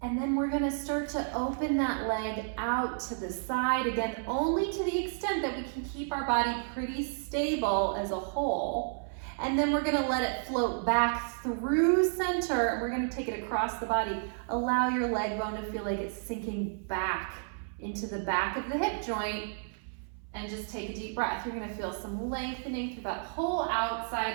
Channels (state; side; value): silent; left; 57 dB below the other